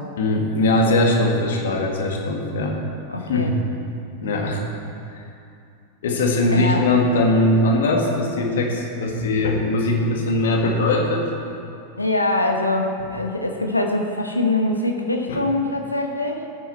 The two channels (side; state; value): both; normal; correlation -0.14